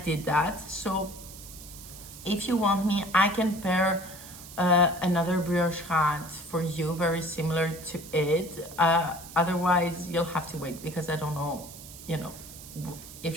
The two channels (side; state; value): right; noise; hiss, 15 dB below the sound